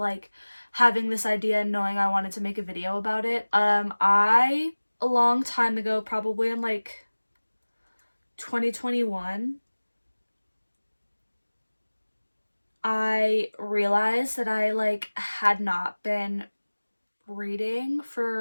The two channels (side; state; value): both; inverted; correlation -1.00